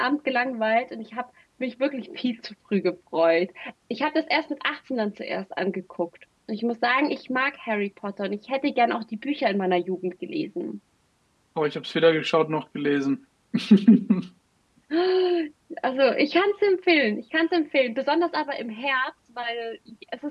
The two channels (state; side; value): identical; both; correlation 1.00